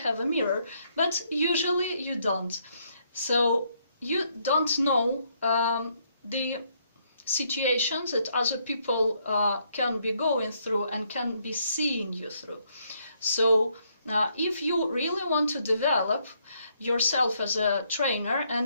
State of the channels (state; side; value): inverted; both; correlation -0.72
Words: a mirror, but usually you don't. So you don't know the situations that other people can be going through and can be seeing you through. So if you really want to develop yourself as a trainer,